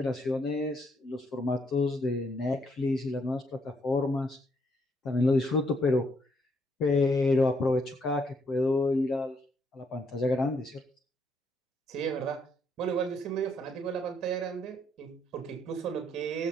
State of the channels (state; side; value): normal; both; correlation 0.72